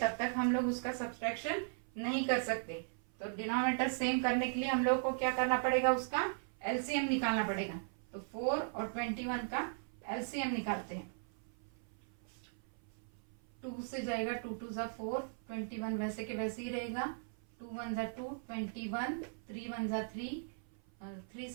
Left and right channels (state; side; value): silent; left; 52 dB below the other